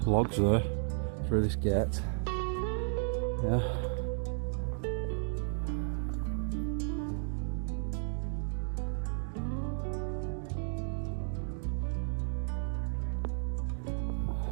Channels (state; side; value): silent; left; 55 dB below the other